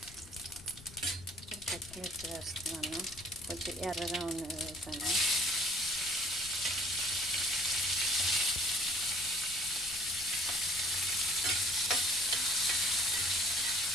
పచ్చిమిర్చి వేస్తున్నాను. కొంచెం ఎర్రగా ఉన్నది వేసాను.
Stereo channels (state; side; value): noise; left; rumble, 19 dB below the sound